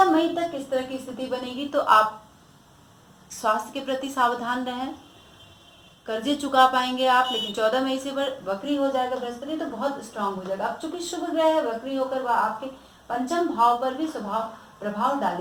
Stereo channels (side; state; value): both; identical; correlation 1.00